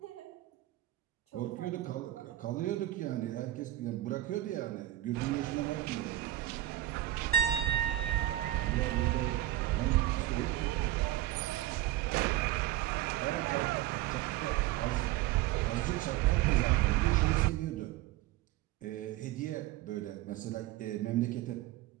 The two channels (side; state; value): left; quieter; 14.9 dB